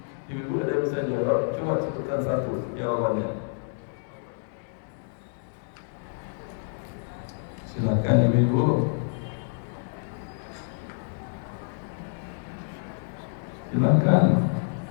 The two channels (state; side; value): silent; right; digital silence